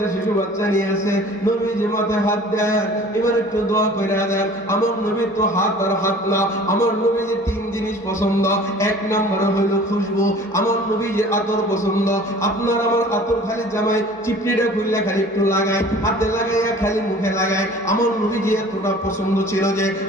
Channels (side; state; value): both; normal; correlation 0.47